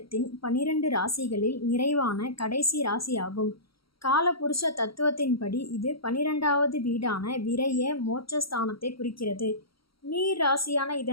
12 ராசிகளில் நிறைவான கடைசி ராசியாகும். காலபுருஷ தத்துவத்தின்படி இது 12வது வீடான விரய மோட்சஸ்தானத்தை குறிக்கிறது. நீர் ராசியான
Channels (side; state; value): right; late; 0.75 ms